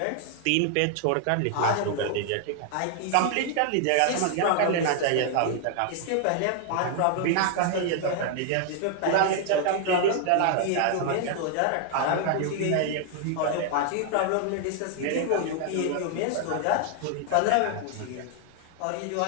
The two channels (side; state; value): both; different; correlation 0.00